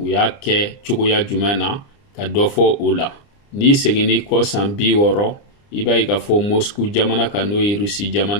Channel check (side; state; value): right; late; 29 ms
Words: y'a kɛ cogoya jumɛn na ka dɔ fɔ o la. Ni seginni kɔ san 60 i b'a ye k'a fɔ Moscou jamana kan n'o ye Russie